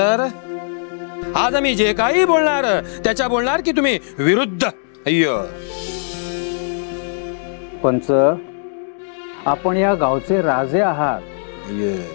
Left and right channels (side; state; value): right; silent; digital silence